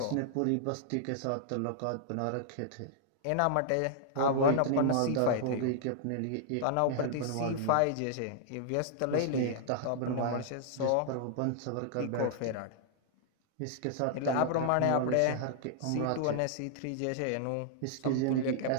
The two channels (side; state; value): both; different; correlation -0.01